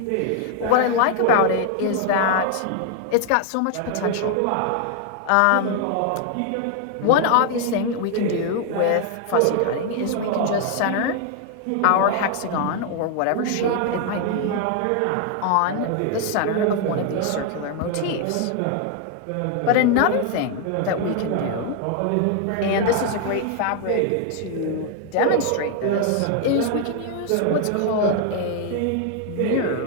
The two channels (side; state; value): both; different; correlation 0.00